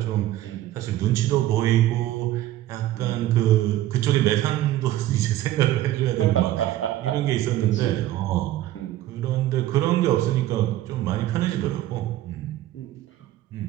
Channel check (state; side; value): quieter; left; 14.3 dB